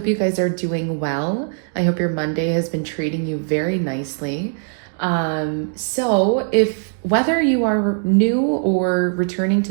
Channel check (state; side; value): silent; left; digital silence